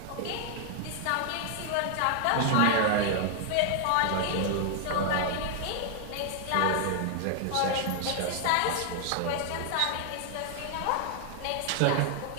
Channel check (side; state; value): both; different; correlation 0.00